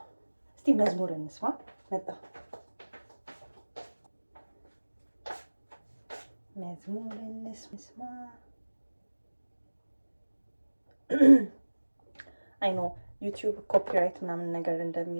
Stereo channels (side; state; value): both; inverted; correlation -1.00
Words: እስቲ መዝሙር እንስማ። መጣ መዝሙር እንስማ። አይ ኖ ዩቲዩብ ኮፒራይት ምናምን ነገር